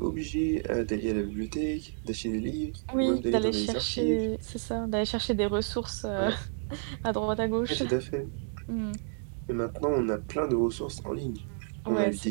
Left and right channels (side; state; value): left; silent; digital silence